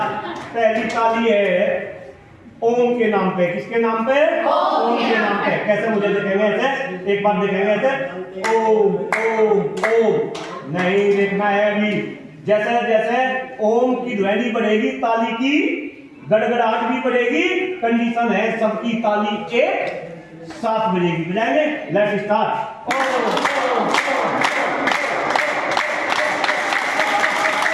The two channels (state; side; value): identical; both; correlation 1.00